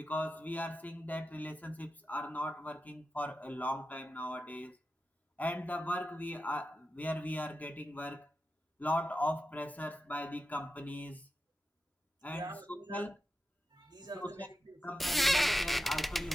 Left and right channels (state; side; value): normal; both; correlation 0.91